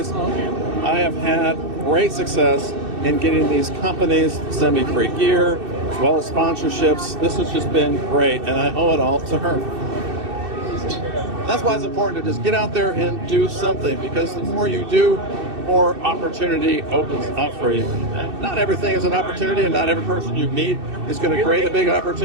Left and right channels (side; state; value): left; late; 2.6 ms